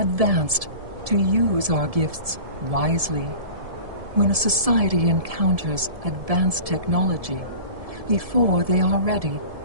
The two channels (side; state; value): left; late; 1.7 ms